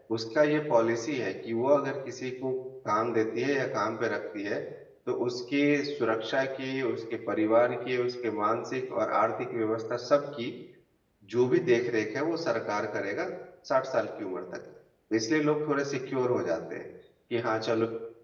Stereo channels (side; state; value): both; identical; correlation 1.00